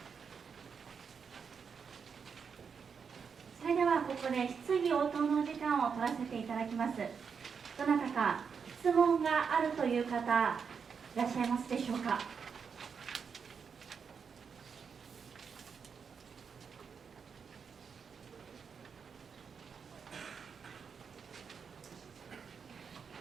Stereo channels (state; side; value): quieter; left; 6.2 dB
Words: それではここで質疑応答の時間を取らせていただきます。どなたか質問があるという方いらっしゃいますでしょうか。